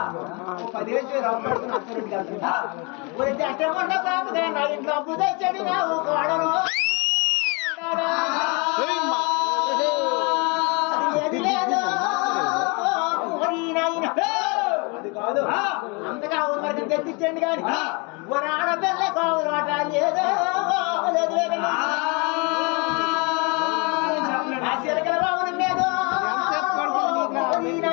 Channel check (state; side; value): quieter; right; 30.9 dB